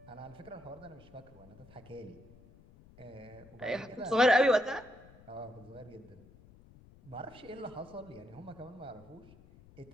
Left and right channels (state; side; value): noise; left; rumble, 22 dB below the sound